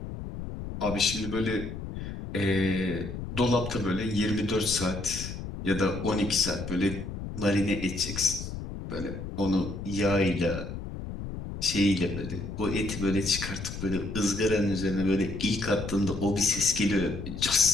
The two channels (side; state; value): left; noise; rumble, 8 dB below the sound